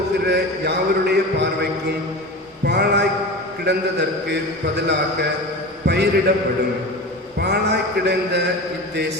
யாவருடைய பார்வைக்கும் பாழாய் கிடந்ததற்கு பதிலாக பயிரிடப்படும். பாழாய் கிடந்த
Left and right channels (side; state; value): both; normal; correlation 0.30